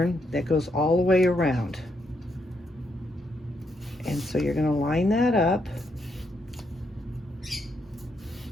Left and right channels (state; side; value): normal; both; correlation 0.78